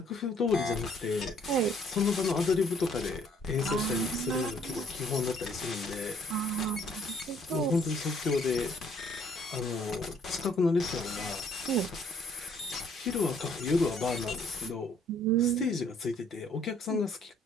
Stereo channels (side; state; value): both; normal; correlation 0.63